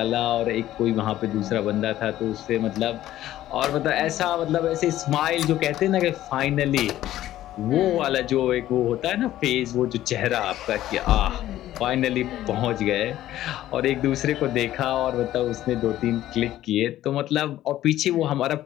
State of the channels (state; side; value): quieter; right; 13.7 dB